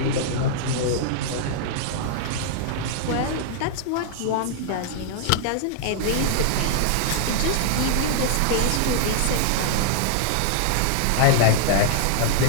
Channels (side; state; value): both; different; correlation -0.01